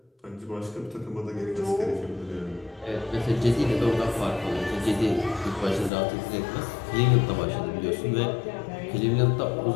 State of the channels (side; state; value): right; drops out; at 5.9 s